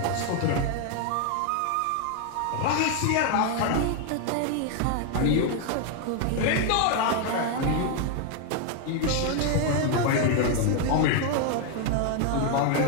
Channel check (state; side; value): different; both; correlation 0.00